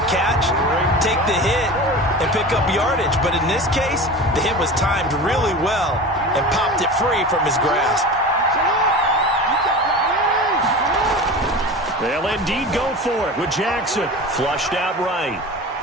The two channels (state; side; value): normal; both; correlation 0.32